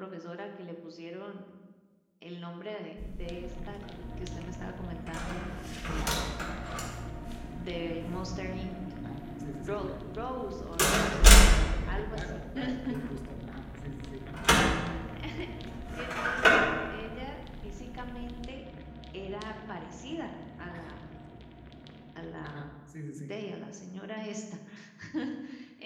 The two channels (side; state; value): both; identical; correlation 1.00